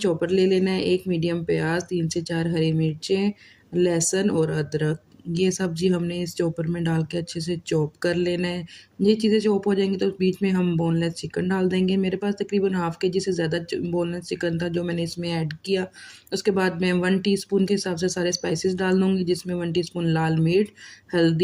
ले लेना है, 1 मीडियम प्याज़, 3 से 4 हरी मिर्चें, लहसुन और अदरक, ये सब्ज़ी हमने इस चॉपर में डाल के अच्छे से चॉप कर लेना है। ये चीज़ें चॉप हो जाएँगी तो बीच में हम बोनलेस चिकन डाल देंगे। मेरे पास तकरीबन हाफ़ केजी से ज़्यादा च बोनलेस चिकन था जो मैंने इसमें ऐड किया। उसके बाद मैं 1 टीस्पून के हिसाब से सारे स्पाइसेस डाल दूँगी, जिसमें 1 टीस्पून लाल मिर्च,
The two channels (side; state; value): both; identical; correlation 1.00